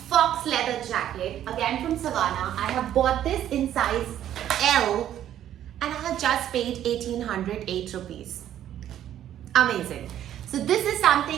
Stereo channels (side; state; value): left; quieter; 11.3 dB